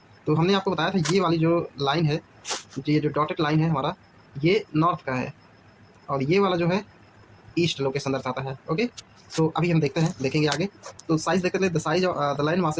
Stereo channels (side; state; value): both; identical; correlation 1.00